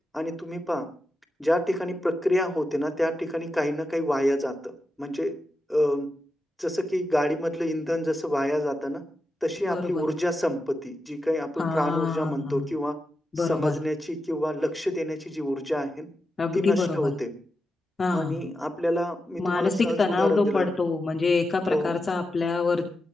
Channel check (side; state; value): both; normal; correlation 0.89